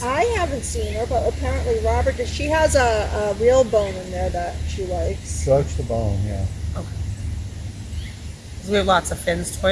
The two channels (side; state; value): both; identical; correlation 1.00